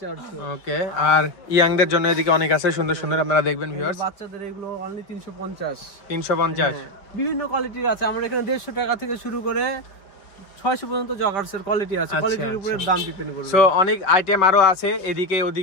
400। ওকে। আর ইয়াংদের জন্য এদিকে অনেক আছে সুন্দর সুন্দর, আপনারা দেখবেন ভিউয়ার্স। বাচ্চাদের এগুলো অনলি 350। 350? বিভিন্ন কোয়ালিটির আছে। আমরা এখানে 150 টাকা থেকে শুরু করে 600 পর্যন্ত জগার্সের কোয়ালিটি আছে। কোয়ালিটির উপরে দাম ডিপেন্ড করবে। সো অনেক আইটেম আরো আছে এদিকে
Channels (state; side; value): late; right; 4.8 ms